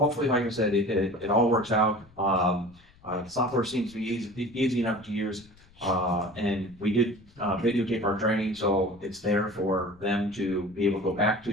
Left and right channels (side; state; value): left; noise; rumble, 27 dB below the sound